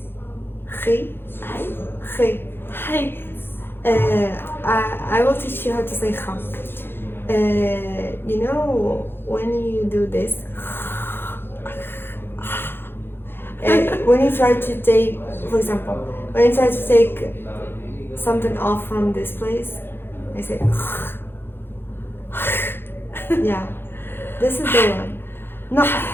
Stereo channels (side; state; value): right; late; 0.10 ms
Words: خي. Hi. خي. Hi. I will teach you how to say kha. You know when you do this, when you try to take, for example, when you try to take something off from this place, I say, yeah, this is the one. No,